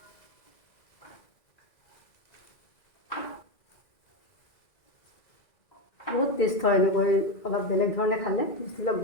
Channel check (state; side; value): late; right; 2.0 ms